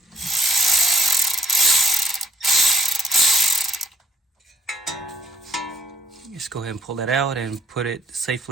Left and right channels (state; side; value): normal; both; correlation 0.66